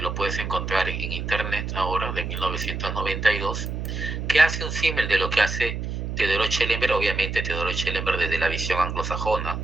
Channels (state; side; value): noise; right; hum, 4 dB below the sound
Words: lo puedes encontrar en internet ahora, de 1992, que hace un símil de lo que hace Teodoro Schellenberg, obviamente Teodoro Schellenberg desde la visión anglosajona,